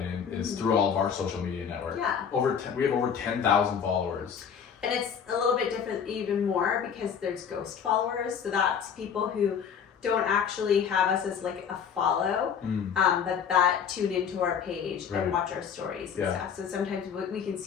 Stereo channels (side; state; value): right; quieter; 7.3 dB